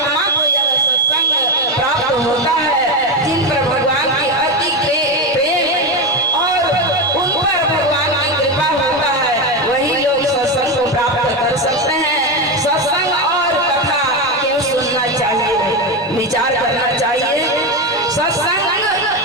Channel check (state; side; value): normal; both; correlation 0.14